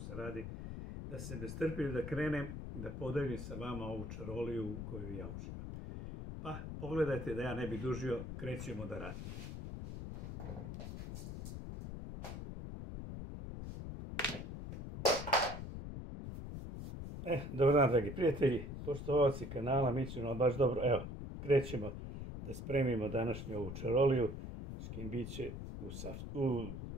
radi, da se ne strpim da krenem, da podelim sa vama ovu čaroliju u koju ja uživam. Pa, pogledajte da ja ne bi dužio, krećemo da radimo. Dobar dan, dragi prijatelji, poštovaoci kanala Mićino, baš dobro. Evo, krećemo da spremimo današnju ovu čaroliju, škimbiće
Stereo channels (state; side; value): noise; left; rumble, 7 dB below the sound